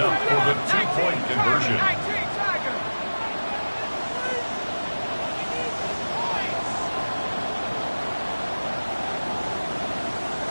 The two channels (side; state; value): both; inverted; correlation -1.00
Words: for the 2-point conversion.